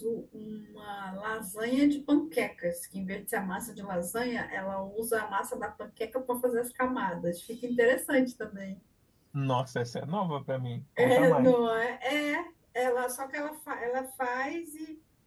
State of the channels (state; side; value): identical; both; correlation 1.00